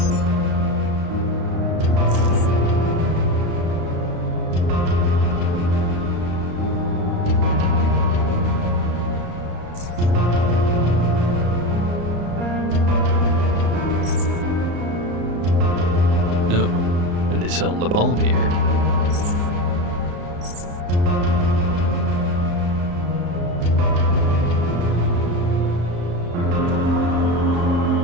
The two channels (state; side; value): late; left; 34 ms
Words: No. And they sell napalm here.